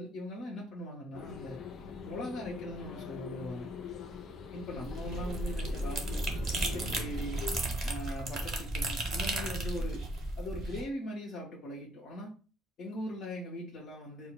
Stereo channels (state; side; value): normal; both; correlation 0.66